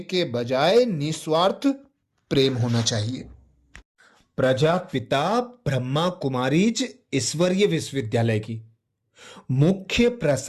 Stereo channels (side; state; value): both; identical; correlation 1.00